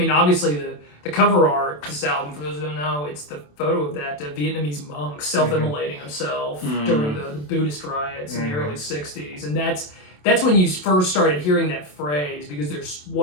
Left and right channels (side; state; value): right; late; 27 ms